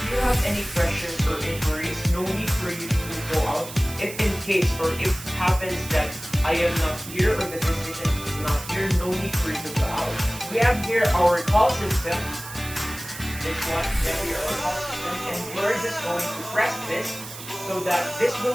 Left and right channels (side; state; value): right; noise; hiss, 12 dB below the sound